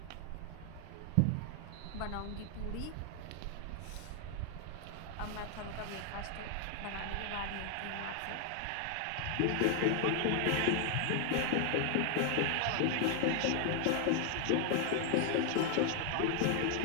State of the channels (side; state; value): both; different; correlation 0.00